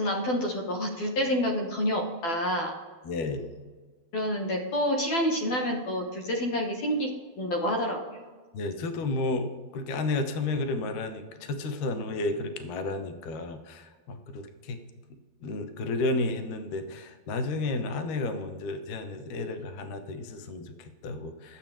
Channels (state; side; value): late; right; 12 ms